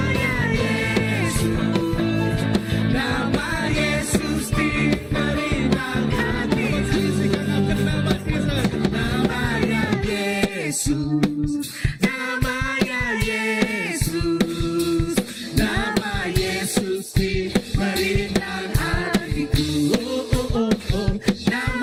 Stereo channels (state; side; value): identical; both; correlation 1.00